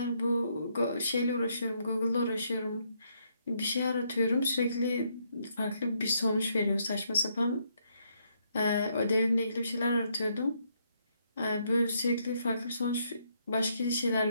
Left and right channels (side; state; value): both; inverted; correlation -0.74